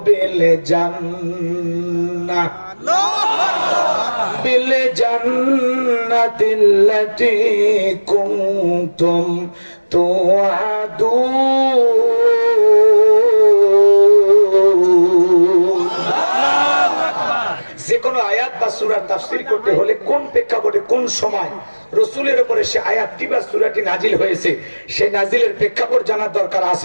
التي كنتم توعدون। যে কোনো আয়াত বা সূরার তাফসীর করতে হলে কোন প্রেক্ষাপটে কোন সময় রাসূলের উপরে সে আয়াতটি বা সূরাটি নাজিল হয়েছে সেই নাজিলের প্রেক্ষাপট জানার দরকার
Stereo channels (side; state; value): both; inverted; correlation -1.00